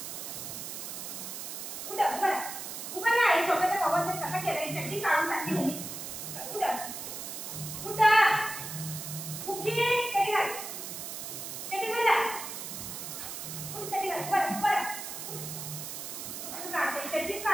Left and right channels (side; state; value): right; noise; hiss, 7 dB below the sound